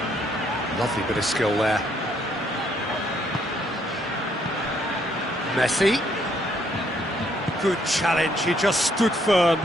Lovely bit of skill there. Messi. Good challenge, he just stood firm.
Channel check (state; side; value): normal; both; correlation 0.69